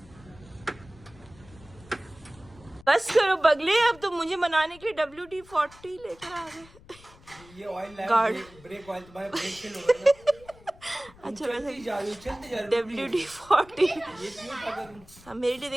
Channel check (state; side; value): noise; left; rumble, 23 dB below the sound